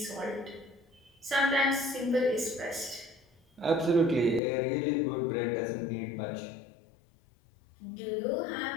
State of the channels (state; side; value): drops out; right; at 4.4 s